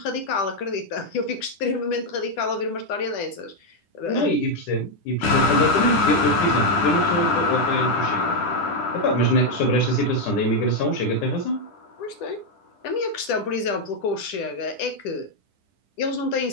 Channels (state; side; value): late; right; 10 ms